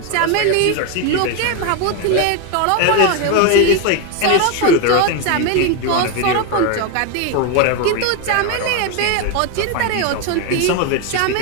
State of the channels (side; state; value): both; different; correlation 0.02